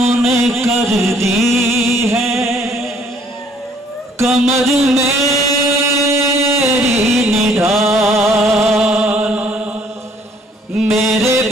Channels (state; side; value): normal; both; correlation 0.62